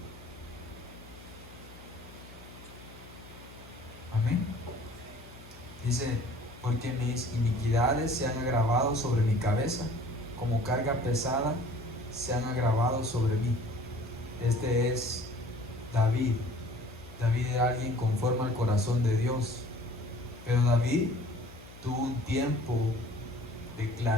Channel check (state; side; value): noise; left; hum, 19 dB below the sound